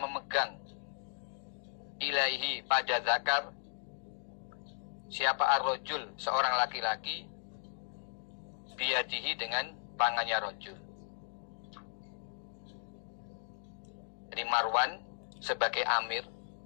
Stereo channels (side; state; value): right; silent; digital silence